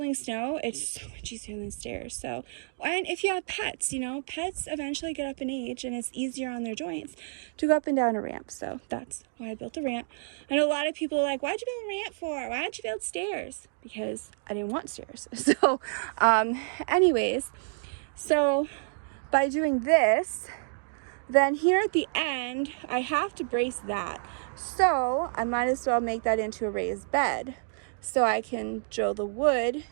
snow, it's so much easier than stairs. So, and if you have pets, you know, pets eventually get up in age and it's easier on their joints to go up and down a ramp. So that's why I built a ramp. I know a lot of people are like, why'd you build a ramp for? Why don't you build stairs? Because I didn't want stairs. So, anyways, so by doing this, then here at the end, I have to brace that. So I might as well make that into a raised bed. So I can drill the wood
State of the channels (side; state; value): left; silent; digital silence